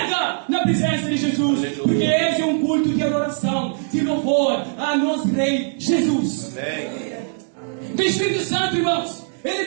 na presença de Jesus, porque esse é um culto de adoração, de louvor a nosso Rei Jesus. O Espírito Santo, irmãos, ele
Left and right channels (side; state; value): left; silent; digital silence